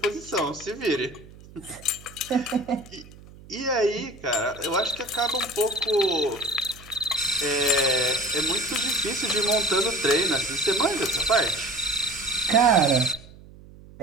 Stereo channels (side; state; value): right; noise; hum, 20 dB below the sound